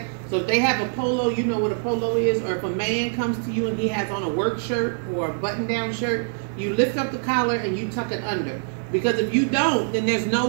So if they have a polo, you know what a polo is, or if a man comes to you and he has on a work shirt or a button-down shirt, you lift up the collar and you tuck it under. Because if you don't, then there's no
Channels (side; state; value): left; silent; digital silence